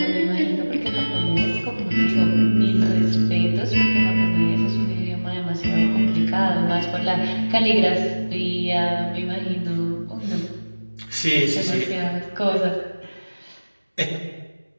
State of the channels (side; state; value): both; inverted; correlation -1.00